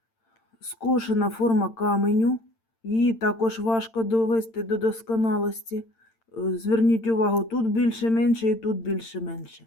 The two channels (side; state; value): right; late; 8.8 ms